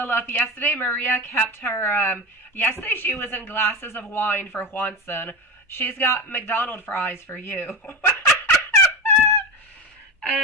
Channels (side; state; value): both; normal; correlation 0.21